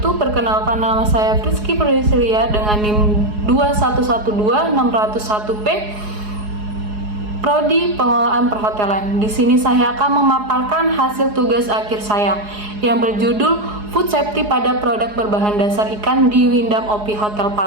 Perkenalkan, nama saya Rizky Priscilia dengan NIM 2112601P, Prodi Pengelolaan Perhotelan. Di sini saya akan memaparkan hasil tugas akhir saya yang berjudul Food Safety pada Produk Berbahan Dasar Ikan di Windam OP Hotel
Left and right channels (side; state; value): left; late; 4.8 ms